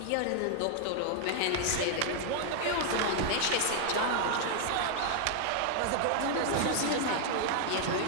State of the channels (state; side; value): different; both; correlation 0.00